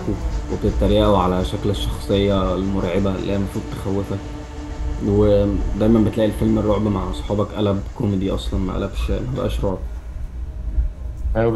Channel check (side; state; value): both; identical; correlation 1.00